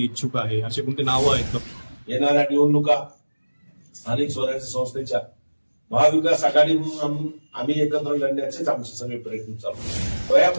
इच्छुक आहे असे कोणते नावं आहेत का? येणाऱ्या निवडणुका स्थानिक स्वराज्य संस्थेच्या महाविकास आघाडी म्हणून आम्ही एकत्र लढण्याचेच आमचे सगळे प्रयत्न चालू.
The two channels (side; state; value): both; inverted; correlation -1.00